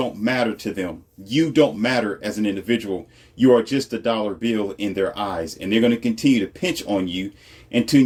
matter to them. You don't matter as an individual. You are just a dollar bill in their eyes, and they're going to continue to pinch on you until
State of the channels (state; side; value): identical; both; correlation 1.00